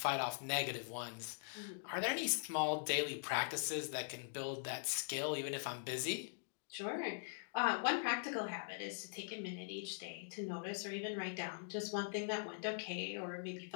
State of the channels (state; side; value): silent; right; digital silence